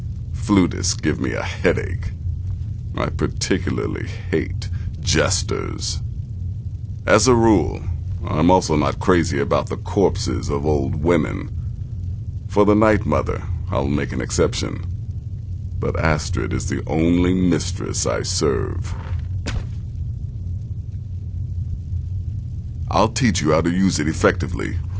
Flutists give me a headache. I particularly hate jesters. As a rule, I'm also not crazy about the corpses of old women. For the Night Mother, I'll make an exception. But Astrid is the only mistress I serve. I'll teach you how to use it effectively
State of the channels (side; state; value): both; identical; correlation 1.00